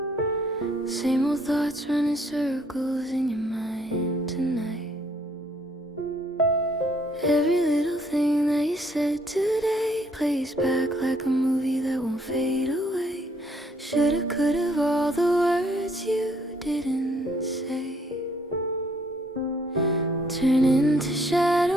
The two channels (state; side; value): normal; both; correlation 0.66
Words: Same old thoughts running circles in your mind tonight. Every little thing that you said today plays back like a movie that won't fade away. Shoulda, coulda, all the words you didn't say turn into